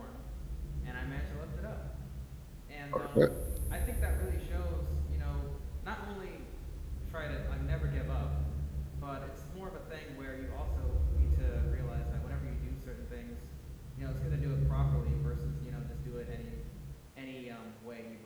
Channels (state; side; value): identical; both; correlation 1.00